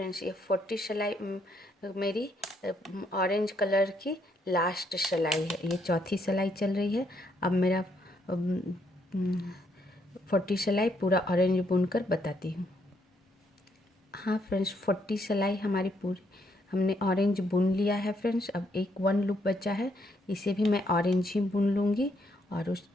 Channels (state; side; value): normal; both; correlation 0.73